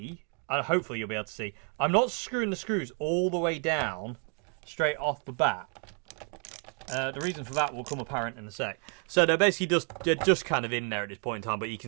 and hopefully you'll be able to see, I'm not screwing the screws all the way down straight off the bat. The reason for that will come apparent in a sec. So they're basically just kind of in there at this point in time, but you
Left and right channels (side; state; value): left; quieter; 38.9 dB